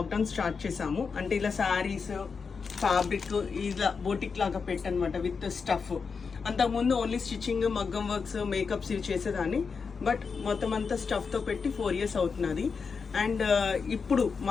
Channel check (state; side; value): quieter; right; 5.3 dB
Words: స్టార్ట్ చేసాము. అంటే ఇలా శారీస్, ఫ్యాబ్రిక్ ఇలా బోటిక్ లాగా పెట్టనమాట విత్ స్టఫ్. అంతకుముందు ఓన్లీ స్టిచ్చింగ్, మగ్గం వర్క్స్, మేకప్స్ ఇవి చేసేదాన్ని. బట్ మొత్తం అంతా స్టఫ్తో పెట్టి 4 years అవుతున్నది. అండ్ ఇప్పుడు